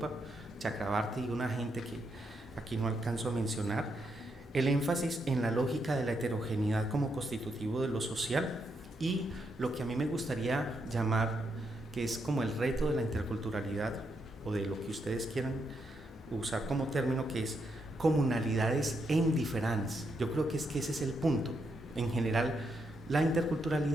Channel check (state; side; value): normal; both; correlation 0.80